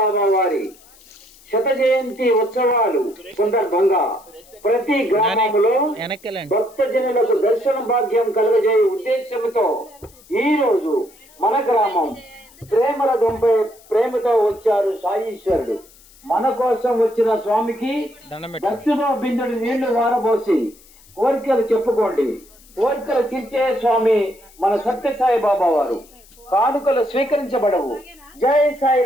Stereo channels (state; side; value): noise; left; hiss, 26 dB below the sound